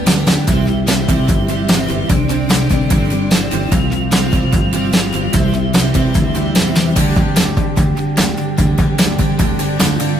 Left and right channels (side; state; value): both; normal; correlation 0.78